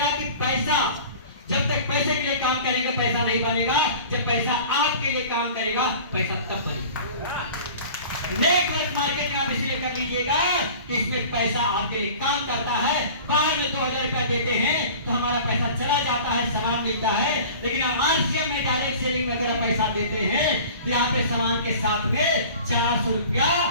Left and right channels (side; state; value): both; inverted; correlation -0.42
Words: कि पैसा, जब तक पैसे के लिए काम करेंगे पैसा नहीं बनेगा, जब पैसा आपके लिए काम करेगा पैसा तब बनेगा। नेटवर्क मार्केटिंग आप इसलिए कर लीजिएगा कि इसमें पैसा आपके लिए काम करता है। बाहर में 2000 रुपया देते हैं तो हमारा पैसा चला जाता है, सामान मिलता है, लेकिन हम आरसीएम में डायरेक्ट सेलिंग में अगर पैसा देते हैं तो यहाँ पे सामान के साथ में 400 रुपया